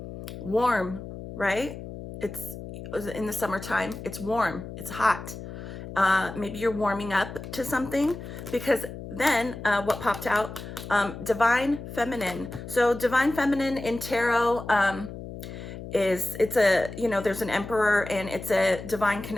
Warm, right? It's in the summertime, it's warm, it's hot. Maybe you're warming up to something, because then what popped out, divine feminine. So divine feminine in tarot, there's an emperor, and it's a divine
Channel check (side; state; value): left; noise; hum, 11 dB below the sound